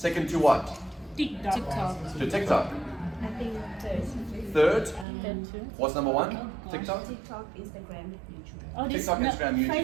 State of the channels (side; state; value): left; drops out; at 5.1 s